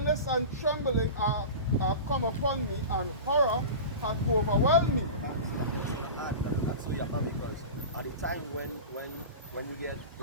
and trembling are come upon me, and horror hath overwhelmed me. That's so you have because at the time when you get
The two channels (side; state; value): both; inverted; correlation -0.31